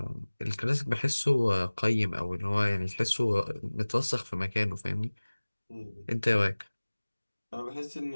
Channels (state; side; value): inverted; both; correlation -1.00